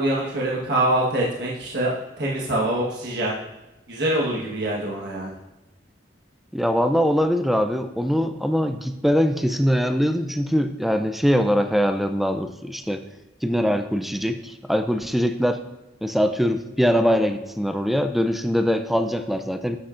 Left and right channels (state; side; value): normal; both; correlation 0.78